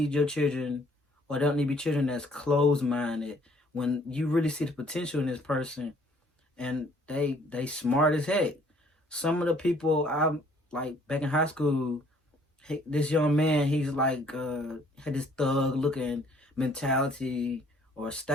your children, or they don't need to be children that's closed minded. When you really see the potential in this person, and they smart as heck. Some of the people I'm like back in high school, this young man, he's like had this thug looking mentality or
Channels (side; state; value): both; normal; correlation 0.60